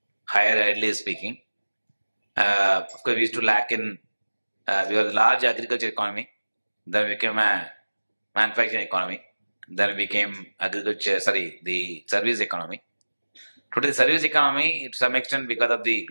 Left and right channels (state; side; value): inverted; both; correlation -1.00